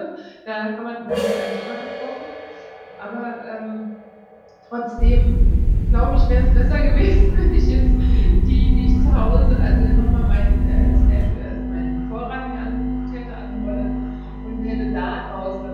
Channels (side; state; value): both; identical; correlation 1.00